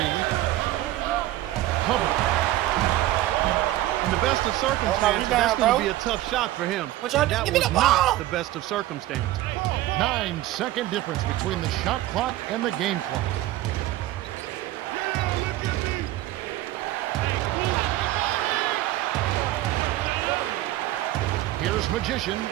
Hubbard. In the best of circumstances, that's going to be a tough shot for him. But that give me was the not ball. the best of circumstances. 9-second difference between the shot clock and the game clock. Here's Magician.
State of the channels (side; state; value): left; quieter; 15.4 dB